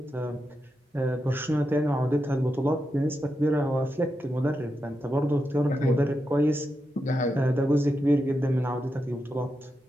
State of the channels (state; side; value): normal; both; correlation 0.87